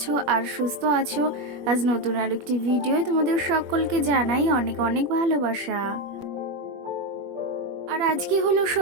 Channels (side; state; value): left; late; 21 ms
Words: আর সুস্থ আছো। আজ নতুন আরেকটি ভিডিও তোমাদের সকলকে জানাই অনেক অনেক ভালোবাসা। আর আজকে হলো